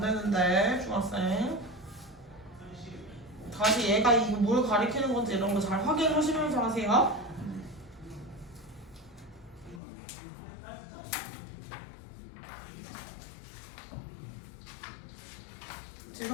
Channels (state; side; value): drops out; right; at 9.8 s